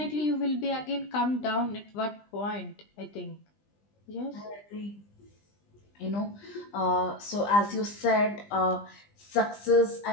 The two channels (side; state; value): right; late; 20 ms